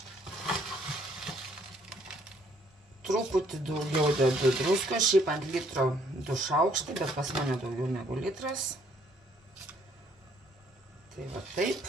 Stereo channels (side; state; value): both; normal; correlation 0.65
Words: Truputį daugiau dedu druskos, šiaip ant litro 2 šaukštai, bet pas mane daugiau negu litras. Tai va